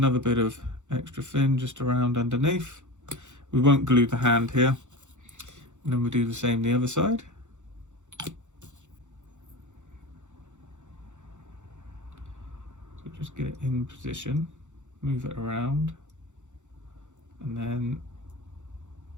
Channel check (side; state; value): left; late; 0.84 ms